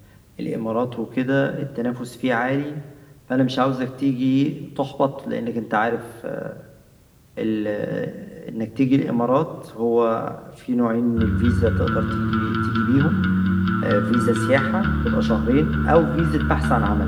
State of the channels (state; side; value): identical; both; correlation 1.00